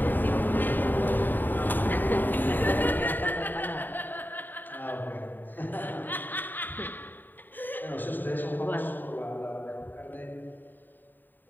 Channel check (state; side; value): late; right; 0.090 ms